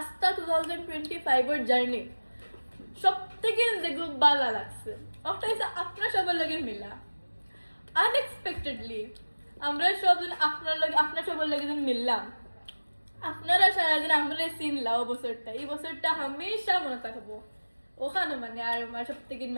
2025 জার্নি সব থেকে যেগুলো ভালো লাগছে ওটা হচ্ছে আপনার সবার লগে মিলা আনএক্সপেক্টেডলি আমরা সবজন আপনার সবার লগে যেন মিললাম। আপনারা সারাদিন আমরা চিনলাম বছরটা, এই বছরটা হামেশা মনে থাকবো ওখানে মানে আর আমার সব থেকে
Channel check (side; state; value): both; inverted; correlation -1.00